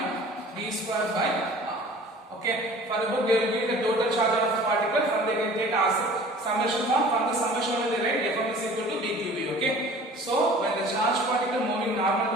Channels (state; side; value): normal; both; correlation 0.46